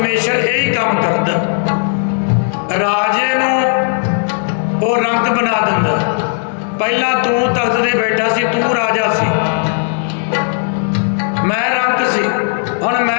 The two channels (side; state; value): right; silent; 65 dB below the other